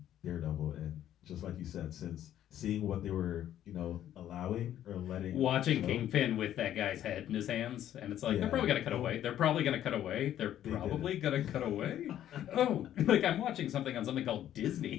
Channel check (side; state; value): right; quieter; 11.5 dB